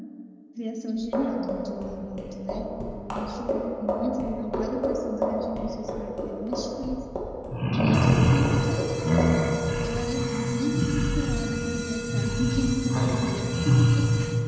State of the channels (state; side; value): identical; both; correlation 1.00